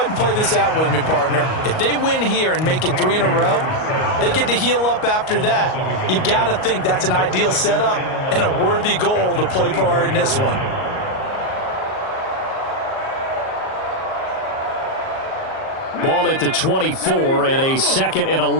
and play this out with me, partner. If they win here and make it 3 in a row, they get to heal up after that. You've got to think that's an ideal setup and a worthy goal to play for in this one. Ball at the 24 and a 2nd and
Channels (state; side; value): late; right; 38 ms